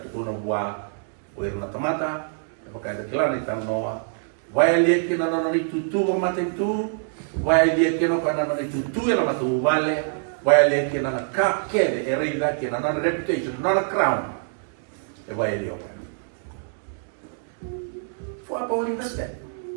tu na buah uir na tomata pakai ada kilan itu noa vai lihat kena nona itu tu mata itu vai lihat kena nona itu tu yang matu vale vai lihat kena na kakek erida kena nona reputation nona crown vai lihat for apa uling nasdaq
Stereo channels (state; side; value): silent; left; digital silence